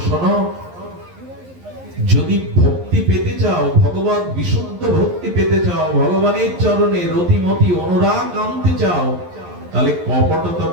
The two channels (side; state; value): left; late; 11 ms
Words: শোনো, যদি ভক্তি পেতে চাও, ভগবত বিশুদ্ধ ভক্তি পেতে চাও, ভগবানের চরণে রতিমতি অনুরাগ আনতে চাও, তাহলে কপটতা